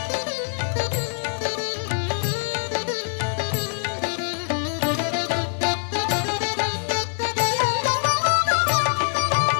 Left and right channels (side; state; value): right; silent; digital silence